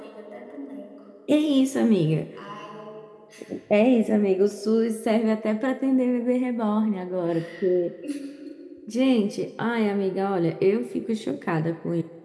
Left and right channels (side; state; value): both; identical; correlation 1.00